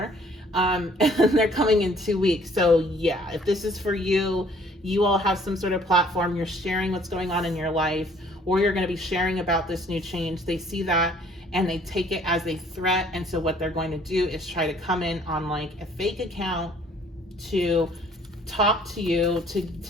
And they're coming in 2 weeks. So yeah, if this is for you, you all have some sort of platform, you're sharing what's going on in your life, or you're going to be sharing about this new change. They see that and they take it as a threat. And so what they're going to do is try to come in on like a fake account to talk to you, to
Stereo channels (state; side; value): normal; both; correlation 0.58